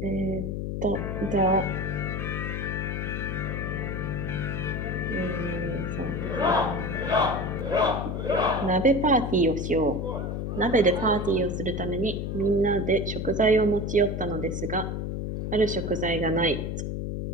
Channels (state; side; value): noise; left; hum, 3 dB below the sound